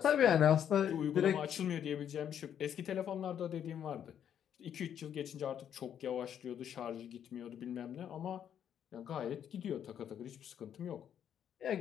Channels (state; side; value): quieter; right; 9.2 dB